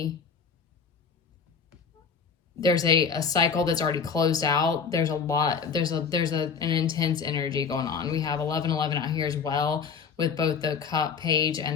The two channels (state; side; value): quieter; right; 6.1 dB